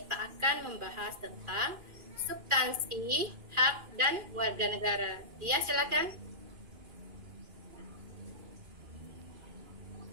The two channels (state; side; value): late; left; 2.4 ms